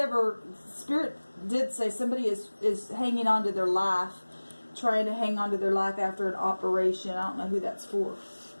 Spirit did say somebody is hanging on to their life, trying to hang on to their life after an operation. I don't know who that's for,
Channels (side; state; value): both; inverted; correlation -1.00